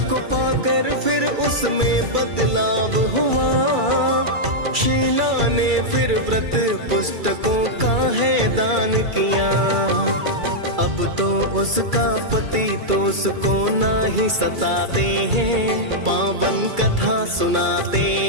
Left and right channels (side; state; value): left; late; 2.3 ms